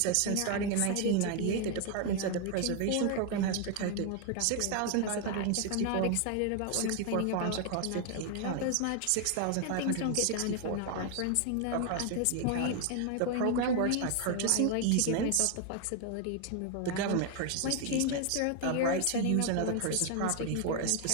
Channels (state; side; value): different; both; correlation 0.01